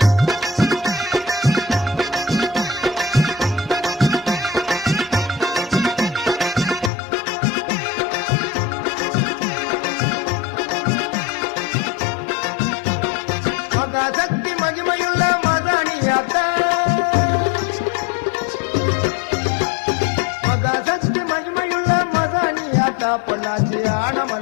மகாசக்தி மகிமையுள்ள மதானியாத்தா மகாசக்தி மகிமையுள்ள மதானியாத்தா பொள்ளாச்சி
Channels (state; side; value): drops out; right; at 6.9 s